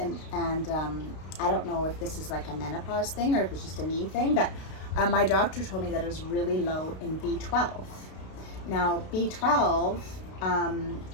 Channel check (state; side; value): late; right; 32 ms